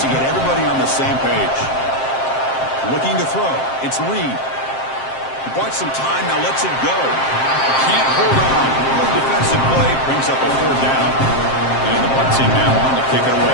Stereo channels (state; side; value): late; right; 7.6 ms